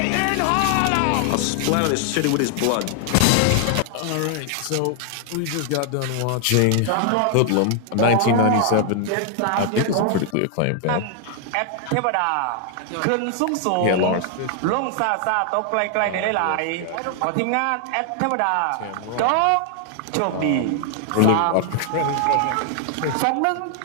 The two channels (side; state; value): both; different; correlation 0.00